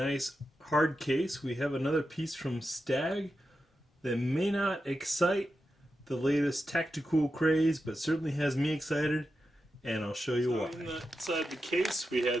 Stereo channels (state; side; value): normal; both; correlation 0.89